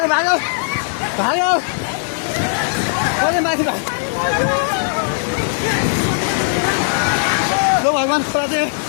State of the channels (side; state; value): right; silent; digital silence